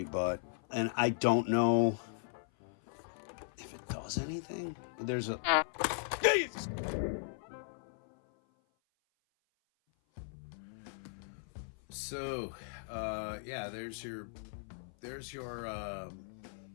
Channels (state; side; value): silent; right; 53 dB below the other